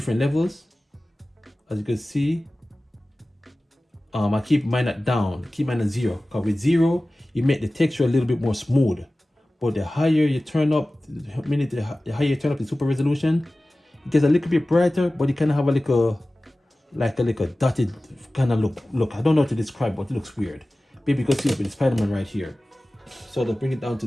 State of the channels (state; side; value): normal; both; correlation 0.97